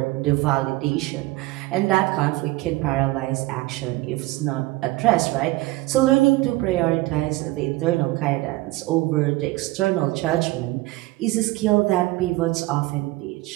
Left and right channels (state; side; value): quieter; left; 19.7 dB